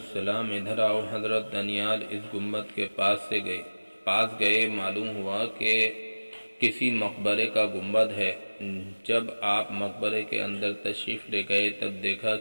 ادھر آؤ۔ حضرت دانیال اس گنبد کے پاس گئے۔ معلوم ہوا کہ کسی مقبرے کا گنبد ہے۔ جب آپ مقبرے کے اندر تشریف لے گئے تب دیکھا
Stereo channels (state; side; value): inverted; both; correlation -1.00